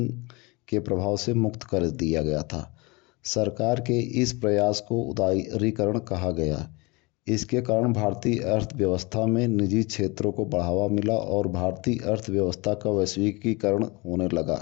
के प्रभाव से मुक्त कर दिया गया था। सरकार के इस प्रयास को उदारीकरण कहा गया। इसके कारण भारतीय अर्थव्यवस्था में निजी क्षेत्रों को बढ़ावा मिला और भारतीय अर्थव्यवस्था का वैश्विकीकरण होने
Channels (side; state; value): right; quieter; 26.0 dB